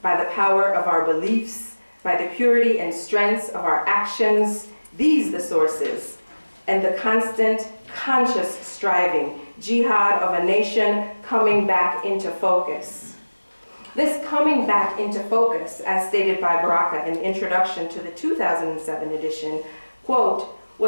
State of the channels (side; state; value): both; inverted; correlation -1.00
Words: by the power of our beliefs, by the purity and strength of our actions, these the sources, and the constant, conscious striving, jihad of a nation coming back into focus." This coming back into focus, as stated by Baraka in the introduction to the 2007 edition, quote,